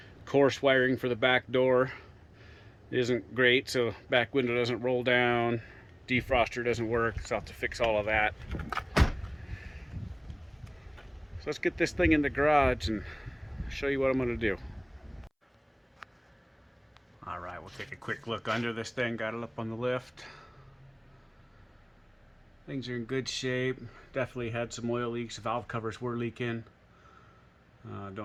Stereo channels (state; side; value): identical; both; correlation 1.00